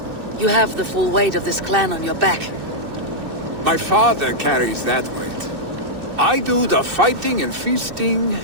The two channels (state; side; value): late; left; 2.6 ms